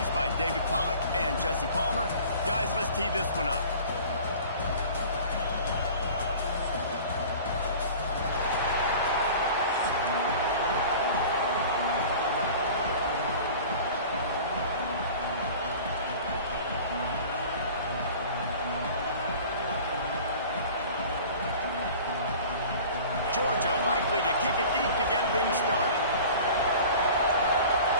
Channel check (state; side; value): inverted; both; correlation -0.42